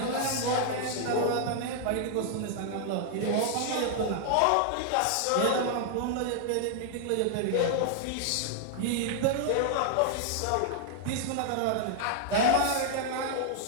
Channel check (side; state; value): both; different; correlation 0.00